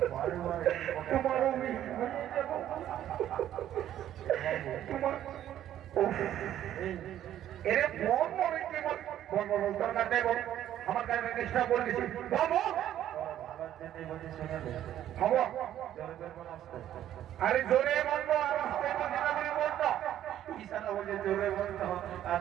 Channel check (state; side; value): quieter; left; 11.7 dB